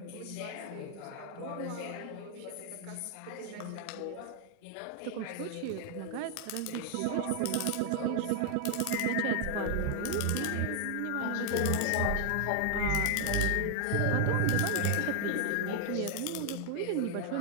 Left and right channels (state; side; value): different; both; correlation 0.00